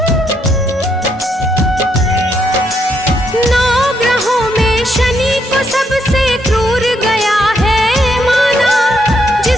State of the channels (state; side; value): normal; both; correlation 0.75